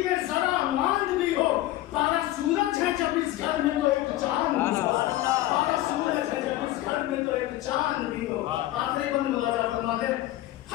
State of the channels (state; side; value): quieter; right; 15.7 dB